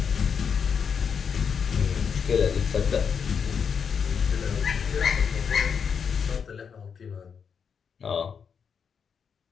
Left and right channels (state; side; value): quieter; right; 6.6 dB